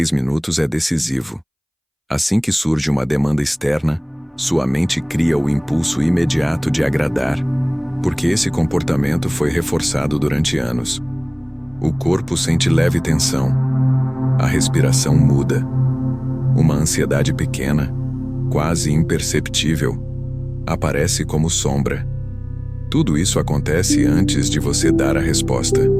minutos é decisivo. Assim que surge uma demanda externa, sua mente cria o impulso imediato de agradar, porque esse comportamento foi reforçado durante anos. O corpo sente leve tensão. A respiração muda. Uma ansiedade pequena, quase imperceptível, aparece como sombra. Tudo isso acontece antes de você dar a resposta.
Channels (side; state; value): both; identical; correlation 1.00